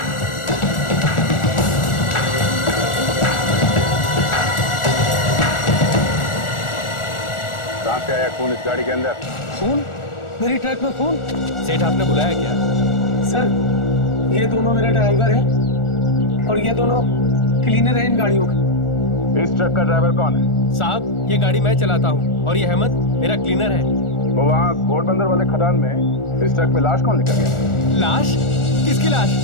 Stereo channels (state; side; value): late; right; 1.4 ms